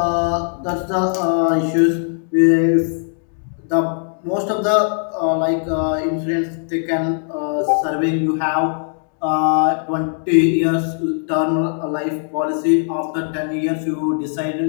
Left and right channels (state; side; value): silent; right; 62 dB below the other